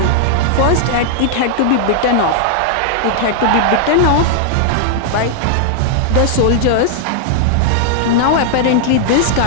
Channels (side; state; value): both; different; correlation -0.01